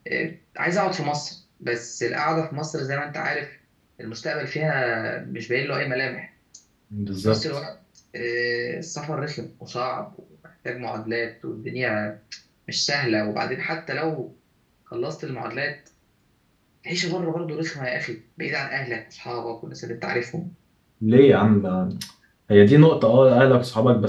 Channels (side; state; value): both; identical; correlation 1.00